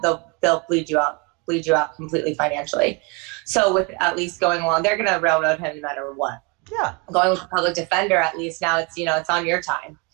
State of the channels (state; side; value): quieter; left; 28.6 dB